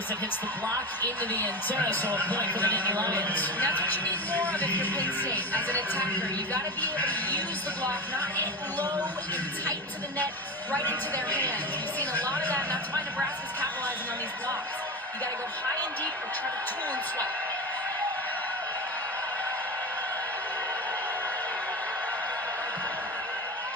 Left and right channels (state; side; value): normal; both; correlation 0.25